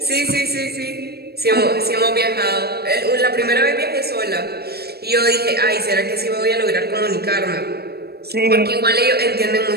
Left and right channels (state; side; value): late; left; 0.46 ms